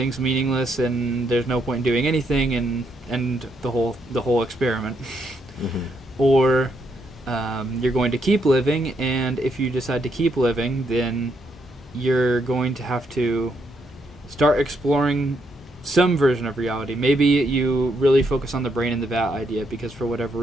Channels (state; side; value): normal; both; correlation 0.76